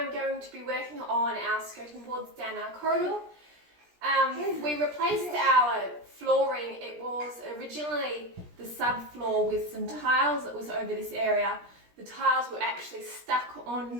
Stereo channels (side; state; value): left; late; 17 ms